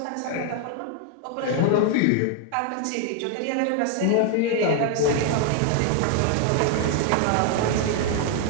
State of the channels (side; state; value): both; different; correlation 0.00